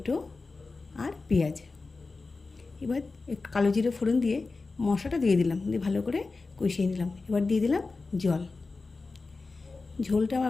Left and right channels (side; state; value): right; quieter; 3.9 dB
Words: আর পেঁয়াজ। এবার একটু কালো জিরে ফোড়ন দিয়ে মশলাটা দিয়ে দিলাম, দিয়ে ভালো করে কষিয়ে নিলাম। এবার দিয়ে দিলাম জল। ঝোলটা